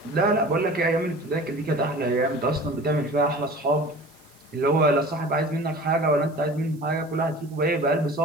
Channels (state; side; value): noise; right; hiss, 28 dB below the sound